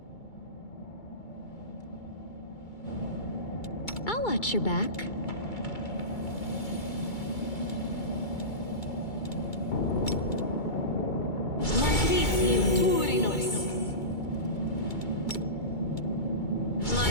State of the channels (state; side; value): late; right; 2.3 ms